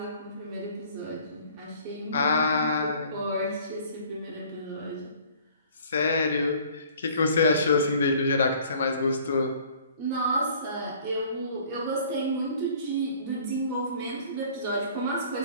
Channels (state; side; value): inverted; both; correlation -0.53